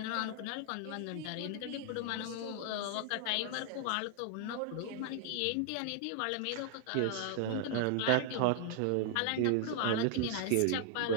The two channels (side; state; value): both; different; correlation 0.00